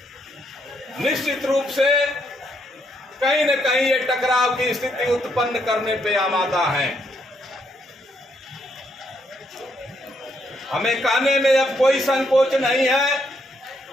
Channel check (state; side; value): normal; both; correlation 0.75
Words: निश्चित रूप से कहीं न कहीं ये टकराव की स्थिति उत्पन्न करने पे आमादा है। हमें कहने में अब कोई संकोच नहीं है,